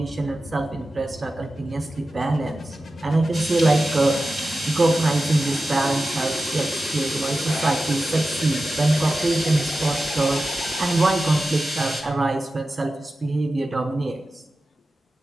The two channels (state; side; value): normal; both; correlation 0.93